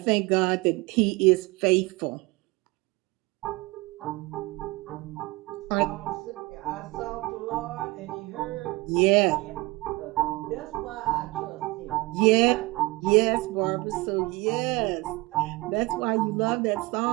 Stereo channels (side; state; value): left; quieter; 22.7 dB